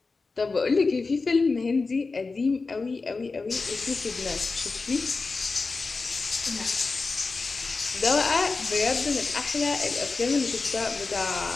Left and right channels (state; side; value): quieter; right; 4.0 dB